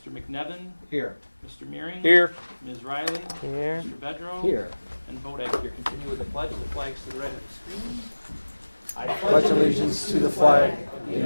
McNevin? Here. Mr. Meering? Here. Ms. Riley? Here. Mr. Bedrow? Here. And Bodak here. Continue with the pledge. The flag's to the right of the screen. I Pledge allegiance to the flag of the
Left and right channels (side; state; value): both; inverted; correlation -1.00